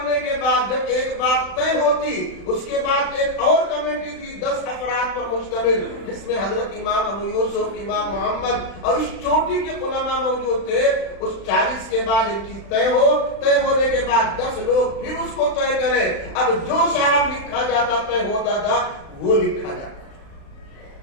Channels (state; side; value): late; right; 36 ms